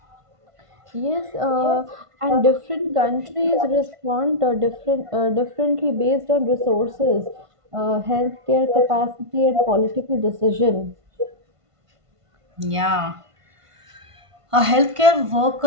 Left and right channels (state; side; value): late; left; 1.5 ms